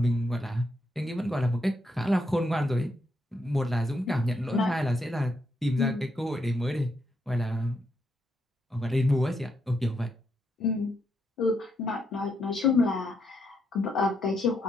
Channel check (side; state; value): both; normal; correlation 0.79